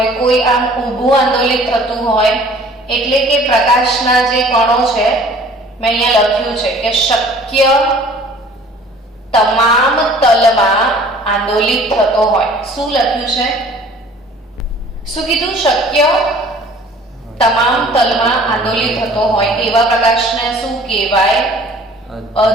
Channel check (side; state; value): both; normal; correlation 0.51